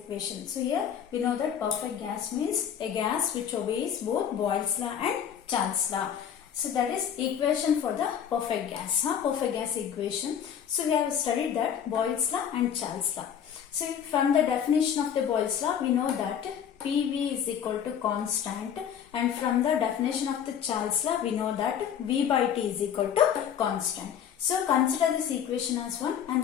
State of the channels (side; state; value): right; quieter; 8.7 dB